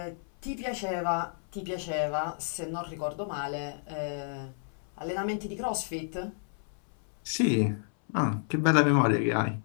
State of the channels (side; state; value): right; silent; 57 dB below the other